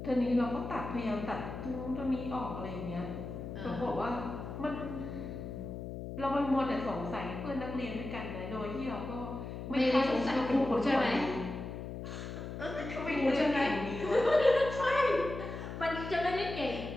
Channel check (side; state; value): left; noise; hum, 7 dB below the sound